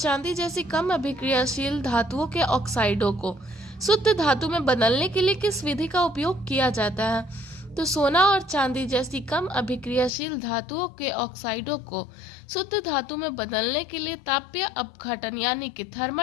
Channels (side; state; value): right; drops out; at 10.1 s